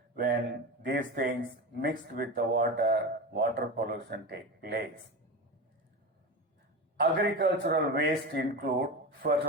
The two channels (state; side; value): normal; both; correlation 0.24